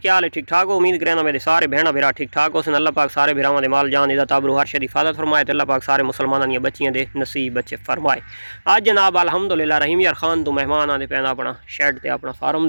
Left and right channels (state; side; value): inverted; both; correlation -1.00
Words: हाल है? ठीक ठाक हो? उम्मीद करना मेरे सारे भैन भरा ठीक ठाक हो। अल्लाह पाक सारे भरावां दे माल जान इदा ताबरू हर शरी हिफाजत फरमाए। अल्लाह पाक सारे मुसलमानां दी बच्चियां दे नसीब बच्चे फरमाए। आज जनाब अल्हम्दुलिल्लाह रहीम यार खान तो मेहमान आते पैदा अपना शैड ते अपना फार्म